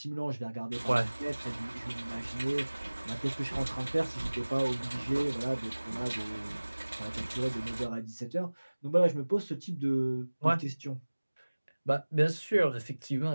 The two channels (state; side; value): inverted; both; correlation -1.00